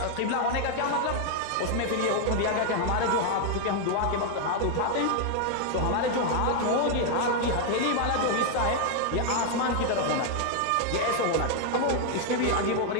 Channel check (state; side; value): different; both; correlation 0.00